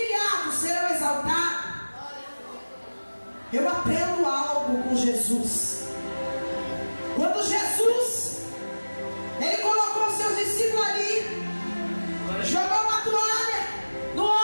serão exaltados, eu aprendo algo com Jesus. Quando Jesus, Ele colocou os seus discípulos ali, jogou uma toalha no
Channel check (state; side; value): inverted; both; correlation -1.00